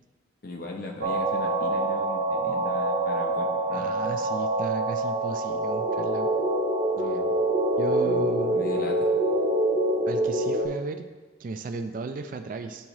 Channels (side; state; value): both; normal; correlation 0.17